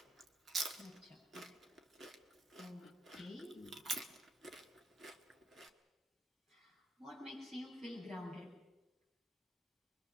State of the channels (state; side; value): normal; both; correlation 0.78